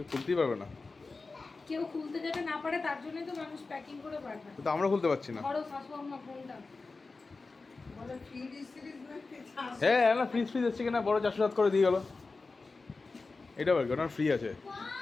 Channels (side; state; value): right; quieter; 3.9 dB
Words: খুলতেই পারবে না। কেউ খুলতে যাতে না পারে তার জন্যই তো মানুষ প্যাকিং করে পাঠায়। তো আমরা খুলতে পারছি না। বড় শাশু আম্মা ফোনটা বলে ফ্রিজ সিরিজ হ্যাঁ না, ফ্রিজ এসছে কিনা বড় 407 করে দিয়ে গেল। এটা বল ওটা ফ্রি আছে।